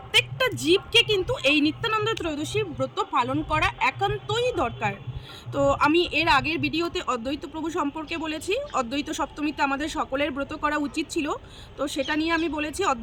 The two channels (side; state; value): both; identical; correlation 1.00